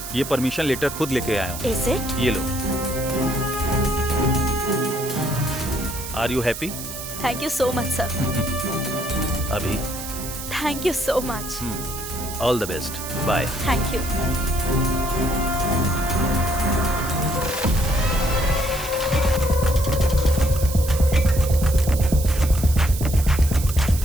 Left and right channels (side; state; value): right; noise; hiss, 9 dB below the sound